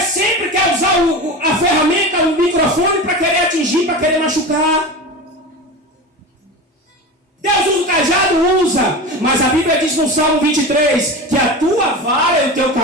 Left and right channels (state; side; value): normal; both; correlation 0.28